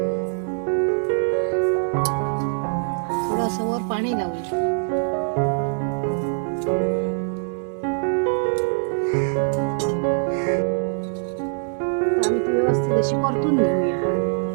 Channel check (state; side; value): silent; left; digital silence